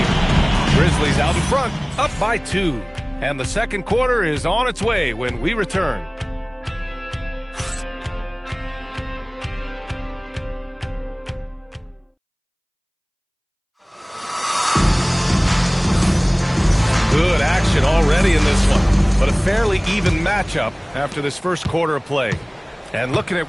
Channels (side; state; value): both; identical; correlation 1.00